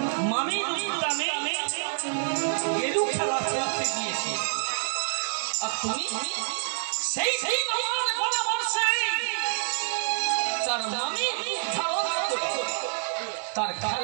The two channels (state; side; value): silent; left; digital silence